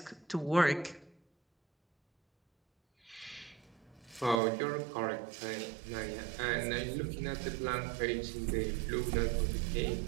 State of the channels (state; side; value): drops out; left; at 4.4 s